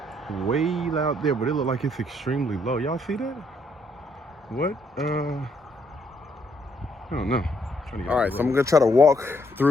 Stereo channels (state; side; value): normal; both; correlation 0.71